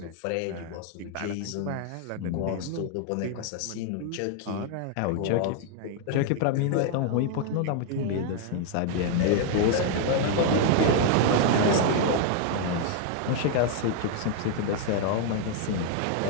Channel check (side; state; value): both; different; correlation 0.00